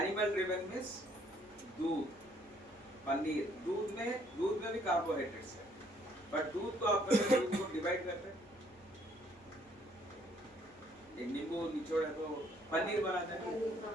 driven means दूध, पनीर, दूध में भी कार्बोहाइड्रेट्स है, बट दूध को आप दूध को डिवाइड करते हैं, एक नींबू निचोड़ है तो पनीर बनाते हैं,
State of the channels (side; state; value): right; noise; hum, 30 dB below the sound